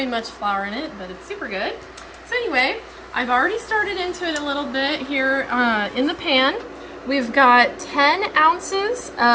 much flour in it, but it's super good. So anyway, I've already started into it a little bit here in the pan. We've got 10 ounces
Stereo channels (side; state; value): both; identical; correlation 1.00